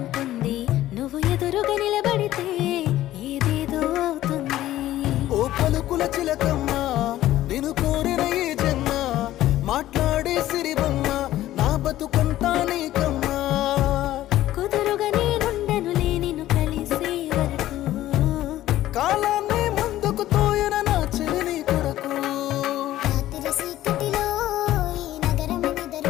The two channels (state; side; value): quieter; right; 14.3 dB